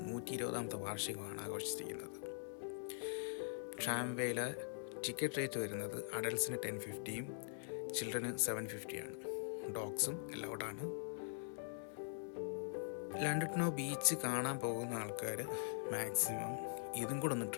120ാമത്തെ വാർഷികമാണ് ആഘോഷിച്ചിരിക്കുന്നത്. ട്രാംവേയിലെ ടിക്കറ്റ് റേറ്റ് വരുന്നത് അഡൽട്ട്സിന് 1050 ചിൽഡ്രന് 750 ആണ്. ഡോഗ്സും അലൗഡാണ്. ലാൻഡോട്ട്നോ ബീച്ച് കാണാൻ പോകുന്ന ആൾക്കാർ മാക്സിമം ഇതും കൂടെ ഒന്ന്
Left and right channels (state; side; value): silent; right; digital silence